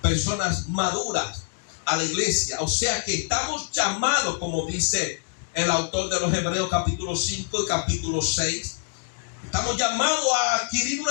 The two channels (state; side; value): silent; right; digital silence